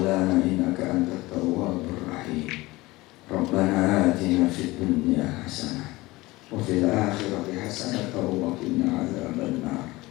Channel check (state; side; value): quieter; right; 20.4 dB